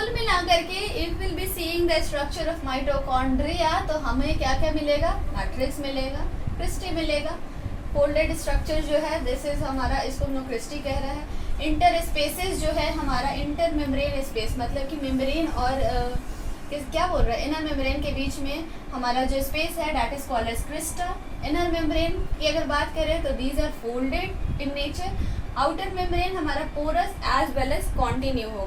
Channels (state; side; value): identical; both; correlation 1.00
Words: मिलाकर के if will be seeing the structure of mitochondria, तो हमें क्या क्या मिलेगा, मैट्रिक्स मिलेगा, क्रिस्टी मिलेगा। फोल्डेड स्ट्रक्चर जो है, दिस इज हमारा, इसको हम लोग क्रिस्टी कह रहे हैं। इंटर स्पेसेस जो है हमारा, इंटर मेम्ब्रेन स्पेस मतलब कि मेम्ब्रेन और क्या बोल रहा है, इनर मेम्ब्रेन के बीच में हमारा जो स्पेस है that is called as crista. Inner membrane की अगर बात करें तो these are folded in nature. Outer membrane हमारा porous as well as continue